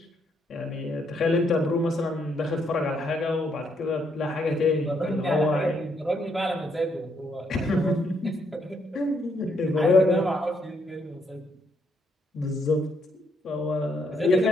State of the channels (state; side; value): normal; both; correlation 0.74